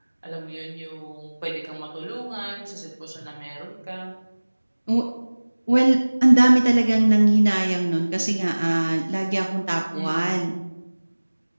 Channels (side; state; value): both; inverted; correlation -1.00